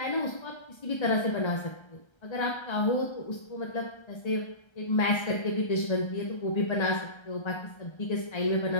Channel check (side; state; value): right; late; 1.3 ms